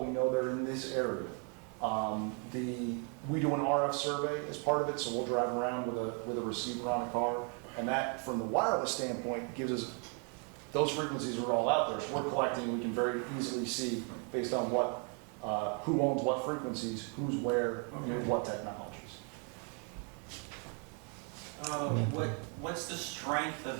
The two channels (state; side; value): quieter; left; 38.4 dB